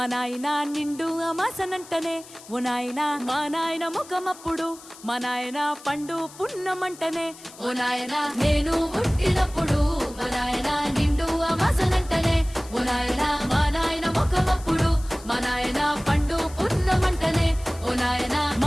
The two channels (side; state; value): left; noise; hiss, 19 dB below the sound